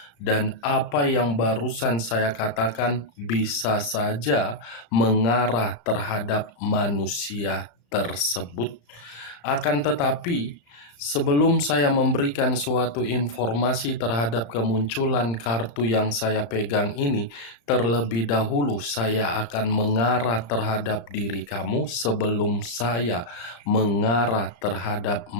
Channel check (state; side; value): late; right; 35 ms